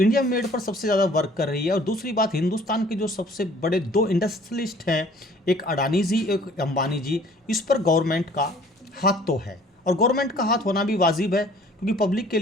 इंडिया मेड पर सबसे ज़्यादा वर्क कर रही है और दूसरी बात हिंदुस्तान के जो सबसे बड़े 2 इंडस्ट्रियलिस्ट हैं, एक अडानी जी एक अंबानी जी, इस पर गवर्नमेंट का हाथ तो है और गवर्नमेंट का हाथ होना भी वाजिब है क्योंकि पब्लिक के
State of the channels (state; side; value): normal; both; correlation 0.54